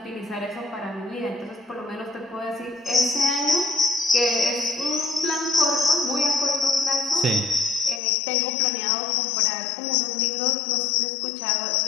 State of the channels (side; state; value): right; drops out; at 8.0 s